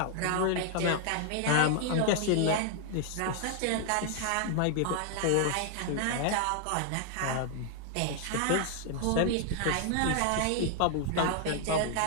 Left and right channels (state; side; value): different; both; correlation 0.00